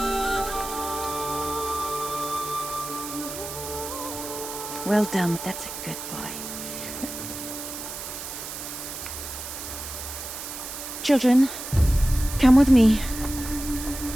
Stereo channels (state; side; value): noise; right; hiss, 8 dB below the sound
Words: Well done. That's a good boy. Children, come with me.